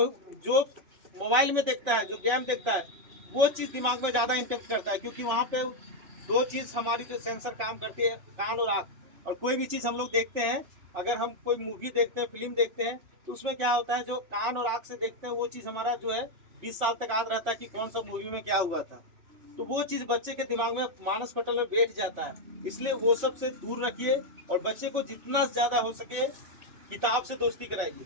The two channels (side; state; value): left; late; 2.9 ms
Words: जो मोबाइल में देखता है, जो गेम देखता है, वो चीज़ दिमाग में ज़्यादा इम्पेक्ट करता है। क्योंकि वहाँ पे दो चीज़ हमारी जो सेंसर काम करती है, कान और आँख। और कोई भी चीज़ हम लोग देखते हैं, अगर हम कोई मूवी देखते हैं, फिल्म देखते हैं, तो उसमें क्या होता है, जो कान और आँख से देखते हैं वो चीज़ हमारा जो है 20 साल तक याद रहता है कि कौन सा मूवी में क्या हुआ था। तो वो चीज़ बच्चे के दिमाग में मानस पटल में बैठ जाता है। इसलिए वो सब से दूर रखिए और बच्चे को जितना ज़्यादा हो सके किताब से दोस्ती कराइए।